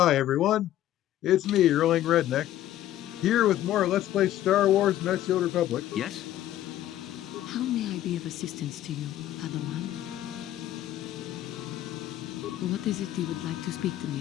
everyone, it's me, Erling Redneck, here with more Let's Play Star Wars Knights of the Old Republic. Yes? How may I be of assistance to you, Padawan? What is it you would like to speak to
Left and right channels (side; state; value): right; quieter; 13.0 dB